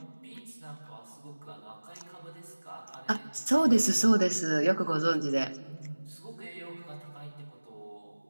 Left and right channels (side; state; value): both; inverted; correlation -1.00